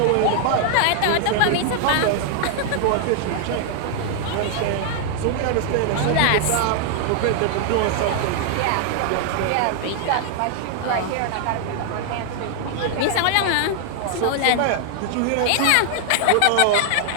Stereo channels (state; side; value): different; both; correlation 0.00